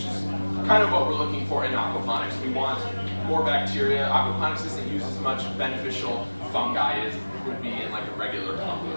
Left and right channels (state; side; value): inverted; both; correlation -1.00